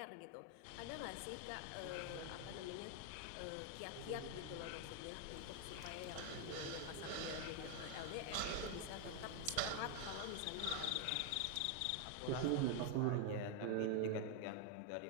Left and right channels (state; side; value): different; both; correlation 0.00